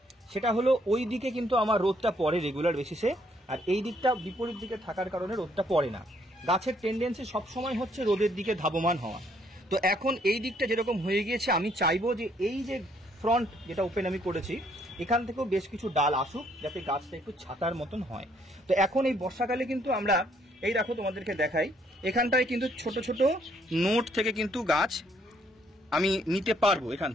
সেটা হলো ওই দিকে কিন্তু আমার রোদটা পড়ে রেগুলার বেসিসে, আর এই দিকটা বিপরীত দিকে থাকার কারণে রোদটা পড়ে না। গাছের টেন্ডেন্সি সবসময় হচ্ছে রোদের দিকে ধাবমান হওয়া। তো এখন এই দিকটা যেরকম হয়ে গিয়েছে, আমি চাইবো যে এই যে ফ্রন্ট যেটা ওপেন আমি করেছি এখান থেকেও বেশ কিছু ডাল আসুক, যাতে গাছটা একটু ছাতার মতন হয়। তো এখন এই বর্ষাকালে কিন্তু আমরা এই দেখো তোমাদেরকে দেখাই, এখানটায় কিন্তু ছোট ছোট নোট থেকে কিন্তু গাছ আমি নিতে পারবো এখান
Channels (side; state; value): both; normal; correlation 0.68